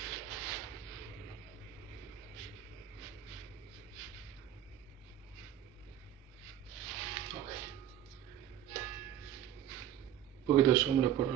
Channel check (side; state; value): left; quieter; 11.2 dB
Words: Un poquito de sombra por